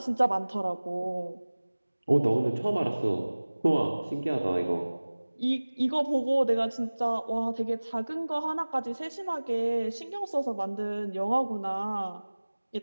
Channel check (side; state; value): both; inverted; correlation -1.00